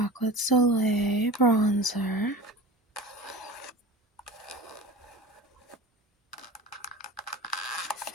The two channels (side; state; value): both; normal; correlation 0.35